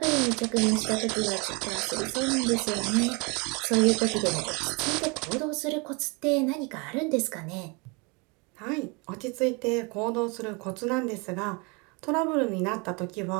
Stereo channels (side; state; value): left; quieter; 30.1 dB